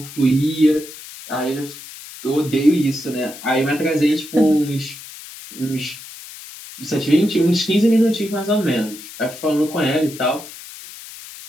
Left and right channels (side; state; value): left; noise; hiss, 15 dB below the sound